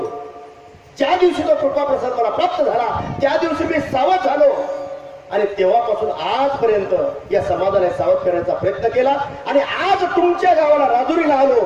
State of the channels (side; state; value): both; identical; correlation 1.00